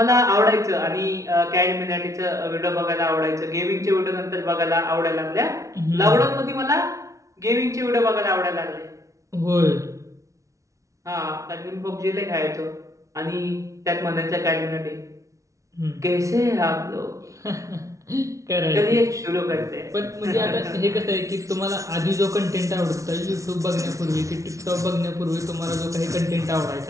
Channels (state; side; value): late; left; 0.15 ms